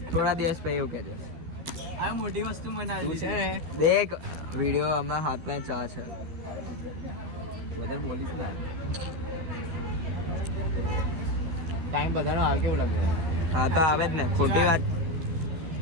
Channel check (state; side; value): late; left; 13 ms